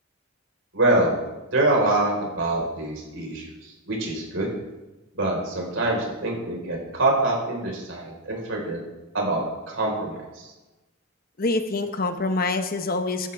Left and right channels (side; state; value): both; normal; correlation -0.10